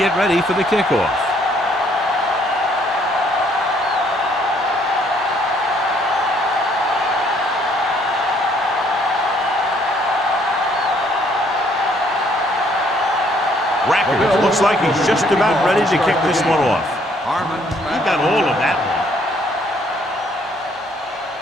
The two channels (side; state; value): both; normal; correlation 0.65